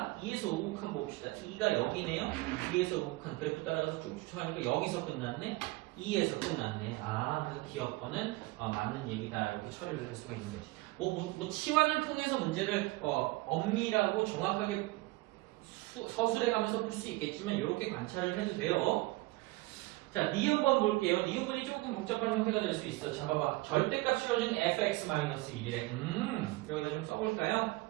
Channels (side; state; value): left; quieter; 21.3 dB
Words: 2에서 우극한 봅시다. 2가 여기네요. 2에서 우극한 그래프 따라가서 쭉 추측하니까 여기서 끝났네. 2에서 끝났네. 그래서 기억번은 맞는 얘기다. 이렇게 처리를 할 수가 있는 거지. 뭐 치환을 통해서 문제를 엄밀하고 정확하게 서술해 가면서 풀 수 있겠지만 이렇게 관찰을 해도 돼요. 자, 니은번 볼게요. 니은번이 조금 복잡한 형태가 될 수 있어. 자, 봐봐. 절대값 씌워준 fx-1이래. 여기다 좀 써볼까요?